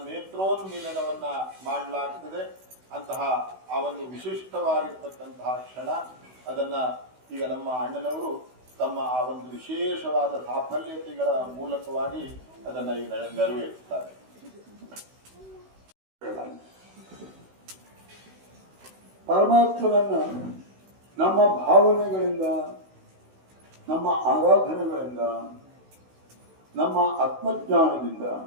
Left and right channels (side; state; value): left; late; 16 ms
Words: ನೇತ್ರೋನ್ಮೀಲನವನ್ನ ಮಾಡಲಾಗ್ತದೆ. ಅಂತಹ ಆ ಒಂದು ವಿಶಿಷ್ಟವಾಗಿರ್ತಕ್ಕಂತಹ ಕ್ಷಣ ಅದನ್ನ ಈಗ ನಮ್ಮ ಅಣ್ಣನವರು ತಮ್ಮ ಆ ಒಂದು ವಿಶೇಷವಾದ ಸಾಫಲ್ಯತೆಗಳ ಮೂಲಕವಾಗಿ ಅದನ್ನ ಈಗ ನೆರವೇರಿಸ್ತಾರೆ. ಪರಮಾತ್ಮನನ್ನ ನಮ್ಮ ಭಾವನೆಗಳಿಂದ, ನಮ್ಮ ಆರಾಧನೆಗಳಿಂದ, ನಮ್ಮ ಆತ್ಮಜ್ಞಾನದಿಂದ,